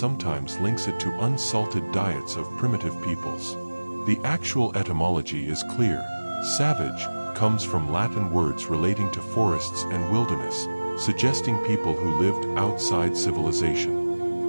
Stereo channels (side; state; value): both; inverted; correlation -1.00